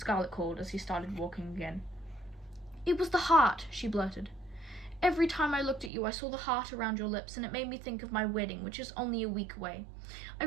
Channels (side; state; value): left; drops out; at 5.9 s